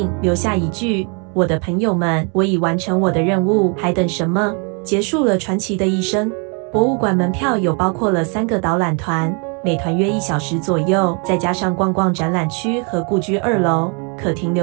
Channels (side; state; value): left; quieter; 36.4 dB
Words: 留下一句：“我的朋友们，我已完成我的任务，还等什么？”结束了传奇的一生。博物馆门票有包括了3个导览团，每团约1小时左右，再加上逛逛展览区和故居2楼，可停